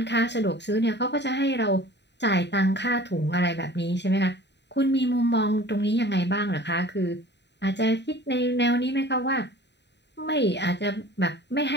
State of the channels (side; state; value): right; late; 0.50 ms